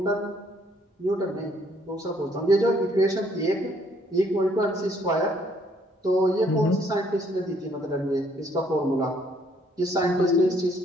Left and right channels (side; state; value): both; normal; correlation 0.66